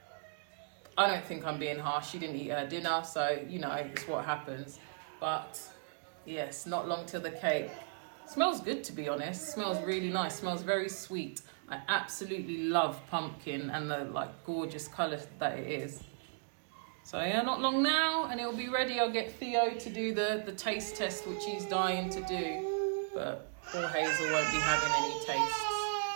I don't think I'm being harsh. She didn't eat her dinner, so you know, it's what happens. But yes, not long till the cake. Smells good, to be honest. Smells really nice. Smells very sweet. I absolutely love pumpkin and the like gorgeous colour that it is. So yeah, not long now and it'll be ready. I'll get Theo to do the taste test, which he's dying to do. But poor Hazel won't be having any tastes.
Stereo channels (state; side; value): silent; left; digital silence